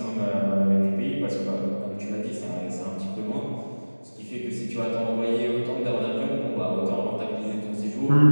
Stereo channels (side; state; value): both; inverted; correlation -1.00